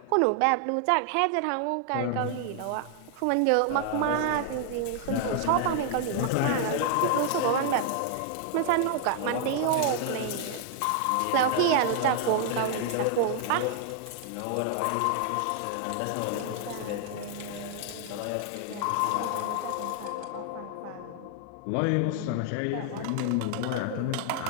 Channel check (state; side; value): different; both; correlation 0.00